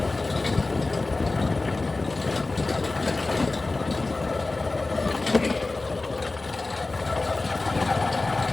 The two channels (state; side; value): quieter; right; 3.3 dB